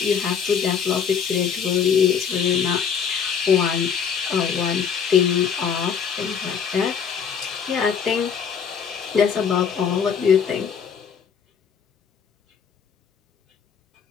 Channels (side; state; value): right; quieter; 7.0 dB